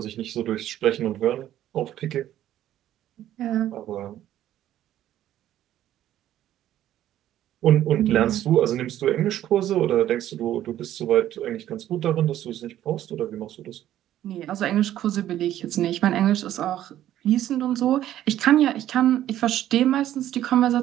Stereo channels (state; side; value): quieter; left; 12.4 dB